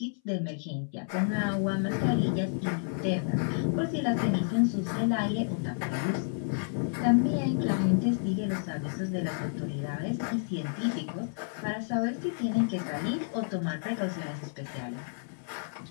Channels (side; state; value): right; silent; 58 dB below the other